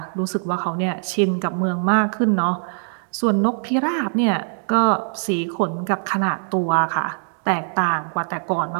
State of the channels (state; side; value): silent; left; digital silence